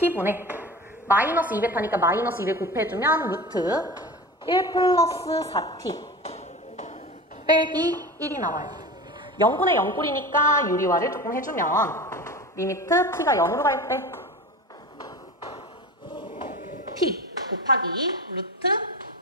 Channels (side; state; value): both; normal; correlation 0.32